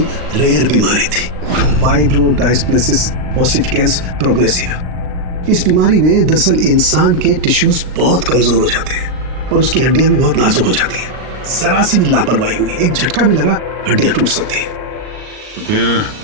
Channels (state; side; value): late; left; 38 ms